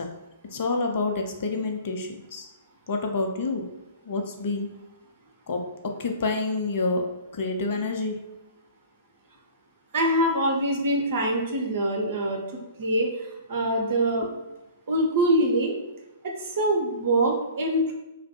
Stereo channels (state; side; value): inverted; both; correlation -0.43